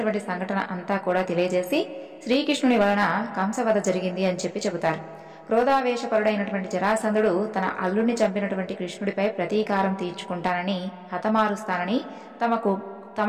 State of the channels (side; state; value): both; identical; correlation 1.00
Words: సంఘటన అంతా కూడా తెలియజేసి శ్రీకృష్ణుని వలన కంసవధ జరిగింది అని చెబుతారు. క్రోధావేశపరుడైనటువంటి జరాసంధుడు తన అల్లుడిని చంపినటువంటి కృష్ణుడిపై ప్రతీకారం తీర్చుకుంటానని, హతమారుస్తానని